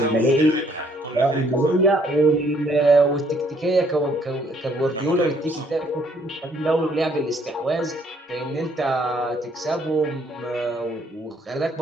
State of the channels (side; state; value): both; normal; correlation 0.65